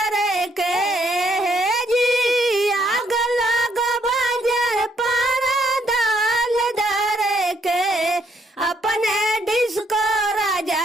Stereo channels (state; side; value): normal; both; correlation 0.71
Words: के। हे जी आग लगो बाजार पारा दाल धरे के। अपने डिस्को